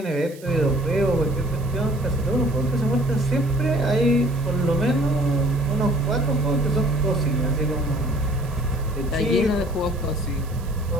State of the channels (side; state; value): right; noise; hiss, 22 dB below the sound